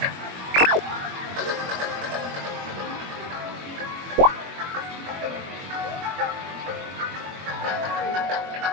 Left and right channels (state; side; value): late; left; 21 ms